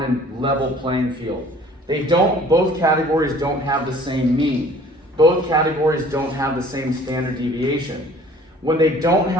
a level playing field. Both categories don't have the same mean. Both categories don't have the same standard deviation. When they don't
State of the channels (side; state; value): both; normal; correlation 0.51